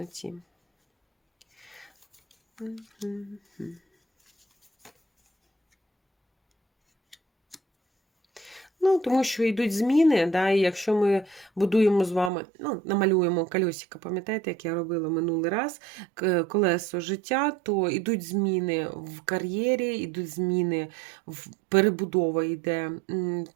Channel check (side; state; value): left; drops out; at 12.3 s